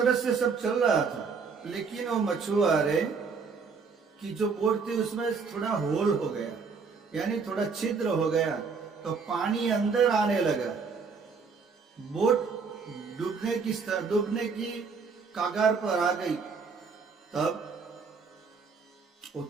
से सब चल रहा था, लेकिन वो मछुआरे की जो बोट थी उसमें थोड़ा होल हो गया, यानी थोड़ा छिद्र हो गया, तो पानी अंदर आने लगा। बोट डूबने की कागार पर आ गई। तब वो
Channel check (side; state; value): left; quieter; 5.2 dB